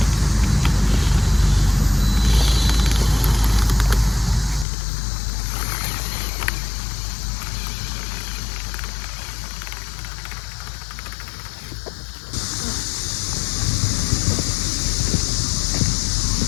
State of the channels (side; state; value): right; drops out; at 4.7 s